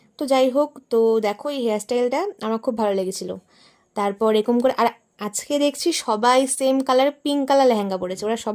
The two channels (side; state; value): both; identical; correlation 1.00